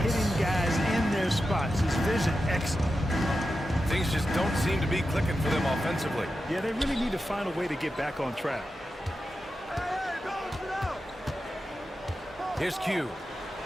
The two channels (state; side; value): normal; both; correlation 0.90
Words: hitting guys in their spots. His vision excellent. Things just don't seem to be clicking for them offensively. Yeah, they really need to find a way to get back on track. Here's Q.